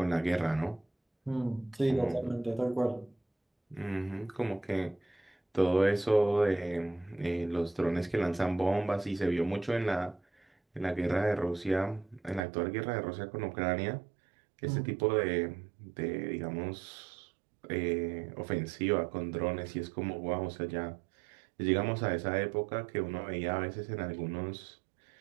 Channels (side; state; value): left; drops out; at 12.4 s